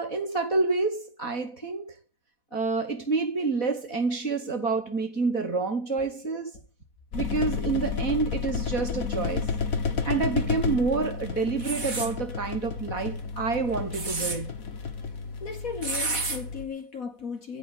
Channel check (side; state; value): right; late; 4.1 ms